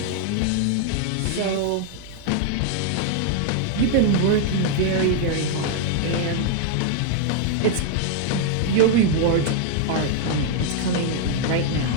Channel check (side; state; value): both; different; correlation 0.00